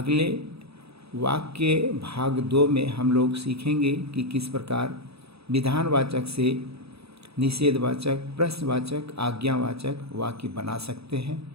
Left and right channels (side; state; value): left; late; 0.78 ms